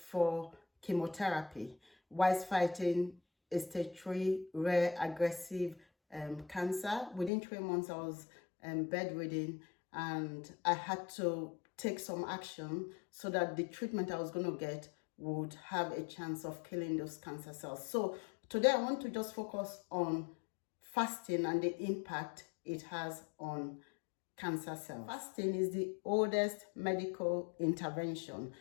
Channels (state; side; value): drops out; right; at 7.3 s